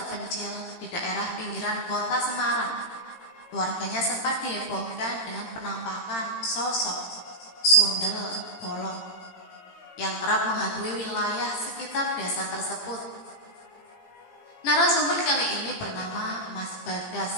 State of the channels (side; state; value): right; late; 18 ms